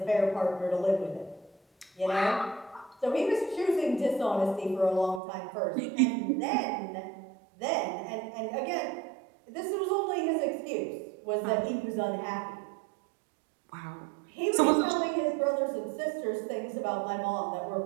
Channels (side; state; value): left; drops out; at 5.2 s